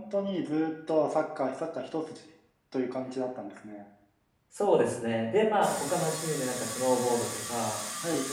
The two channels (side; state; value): both; identical; correlation 1.00